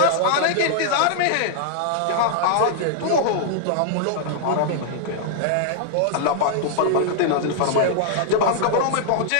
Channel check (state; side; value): different; both; correlation -0.01